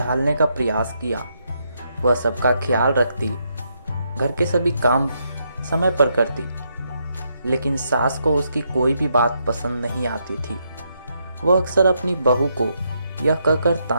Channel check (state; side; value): inverted; both; correlation -0.78